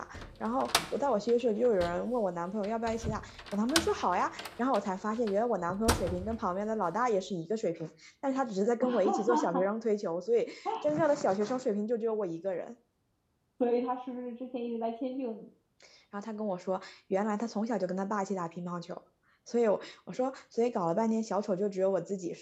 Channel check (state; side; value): identical; both; correlation 1.00